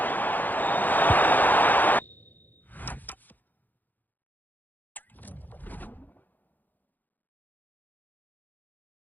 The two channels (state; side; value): late; right; 0.085 ms